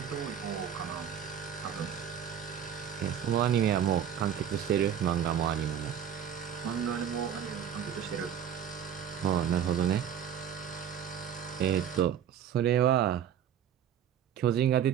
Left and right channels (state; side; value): quieter; left; 9.2 dB